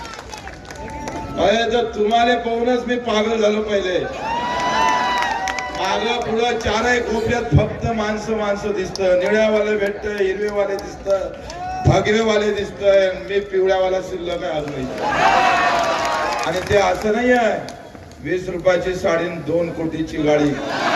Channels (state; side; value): identical; both; correlation 1.00